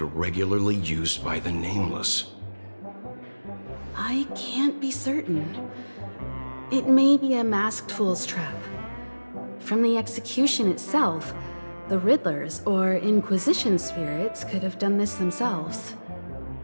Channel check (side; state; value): both; inverted; correlation -1.00